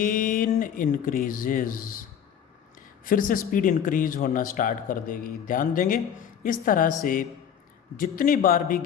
increases, फिर से स्पीड इंक्रीज होना स्टार्ट कर देगी। ध्यान देंगे इस तरह से जितनी बार भी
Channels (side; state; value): right; quieter; 8.7 dB